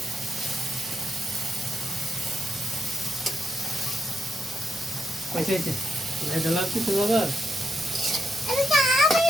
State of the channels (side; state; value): both; normal; correlation 0.82